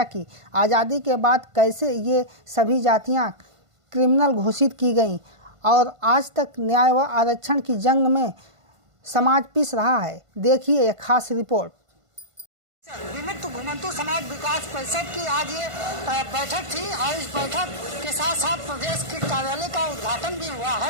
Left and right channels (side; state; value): left; late; 1.5 ms